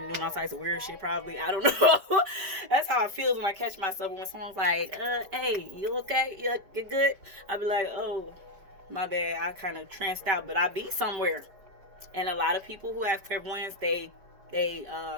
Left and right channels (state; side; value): late; left; 5.1 ms